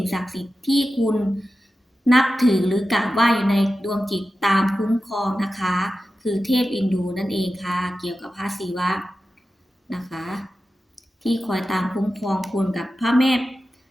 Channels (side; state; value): both; normal; correlation 0.93